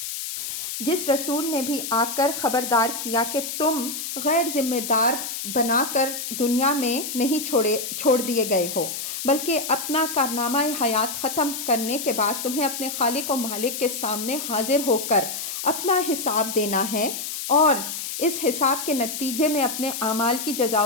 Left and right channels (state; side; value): noise; left; hiss, 5 dB below the sound